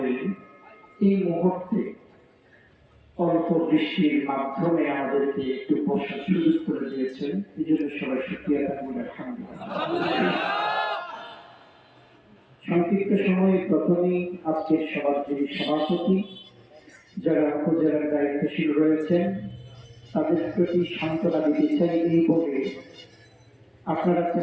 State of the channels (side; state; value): both; identical; correlation 1.00